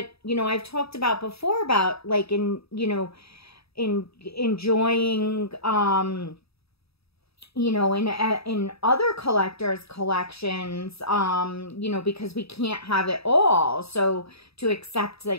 you know, I've talked about before about, like, enjoying, you know, in other collectors' collections, you know, because we can't have it all. So to accept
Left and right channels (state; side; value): late; right; 0.77 ms